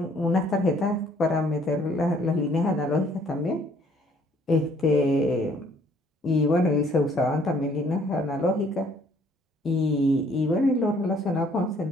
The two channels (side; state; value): both; normal; correlation 0.61